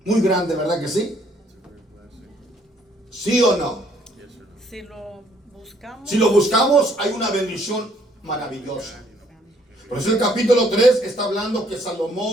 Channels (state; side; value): normal; both; correlation 0.65